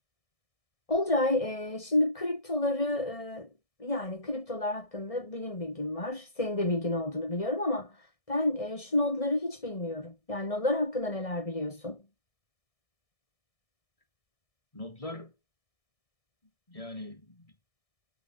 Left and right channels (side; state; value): right; late; 1.6 ms